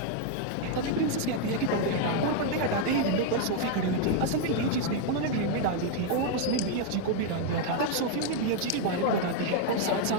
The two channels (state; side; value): different; both; correlation 0.00